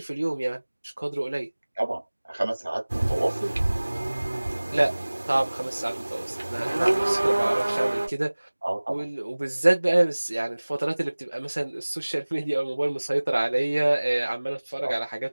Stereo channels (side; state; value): both; inverted; correlation -1.00